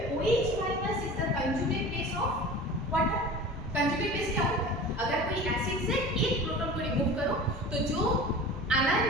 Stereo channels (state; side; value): normal; both; correlation 0.37